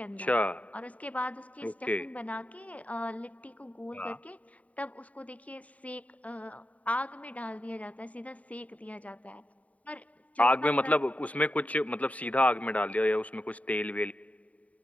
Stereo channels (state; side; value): late; right; 0.069 ms